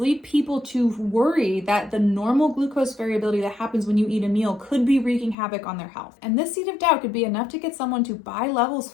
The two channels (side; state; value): right; drops out; at 5.4 s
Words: people to worry that the normal glucose variability that happens when you eat a meal could be wreaking havoc on their health. And this seed of doubt could be enough to get someone to buy Levels